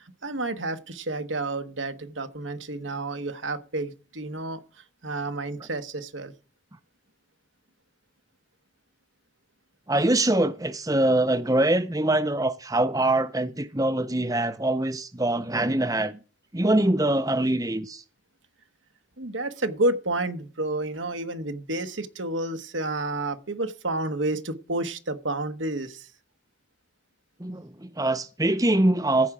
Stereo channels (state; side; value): normal; both; correlation 0.50